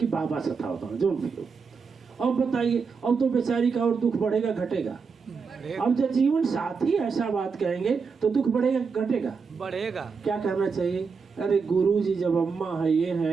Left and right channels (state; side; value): quieter; left; 5.3 dB